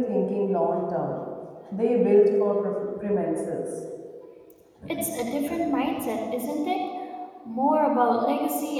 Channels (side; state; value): both; identical; correlation 1.00